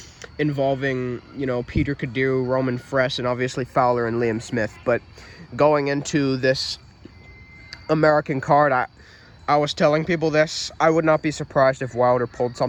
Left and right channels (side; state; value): both; identical; correlation 1.00